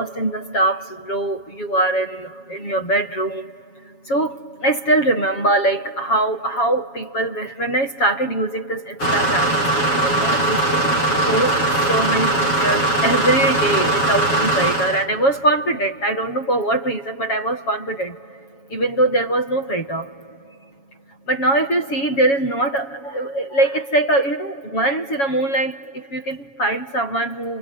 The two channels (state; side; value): late; right; 7.2 ms